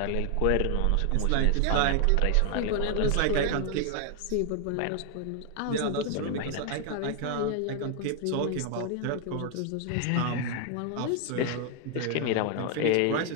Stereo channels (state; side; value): different; both; correlation 0.00